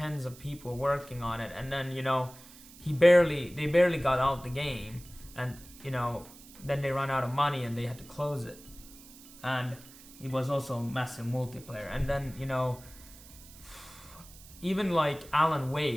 of people working on it, and then, you know, they barely got out the game, and, you know, then they ran out of money and they had to close it. And it was also massive multiplayer. And then, you know, even like Alan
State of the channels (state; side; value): noise; right; hiss, 20 dB below the sound